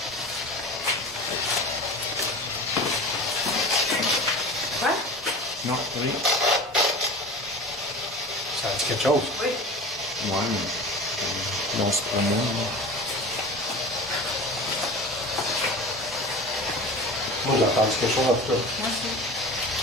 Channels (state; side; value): normal; both; correlation 0.34